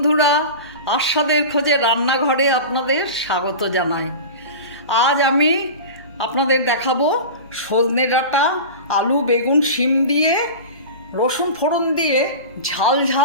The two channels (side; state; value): both; inverted; correlation -0.31